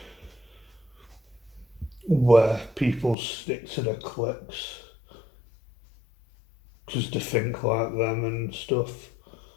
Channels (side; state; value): right; drops out; at 3.2 s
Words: where people stick to their cliques just to think like them and stuff.